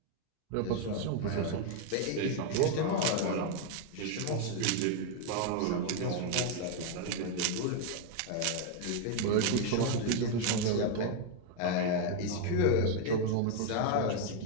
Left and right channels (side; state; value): both; different; correlation 0.01